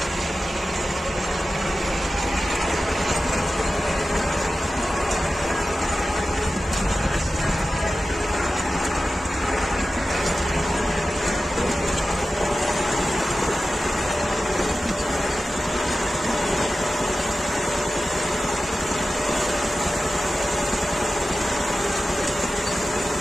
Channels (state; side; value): normal; both; correlation 0.94